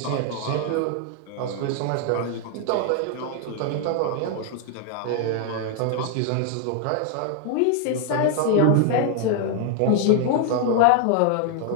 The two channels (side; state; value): both; different; correlation 0.00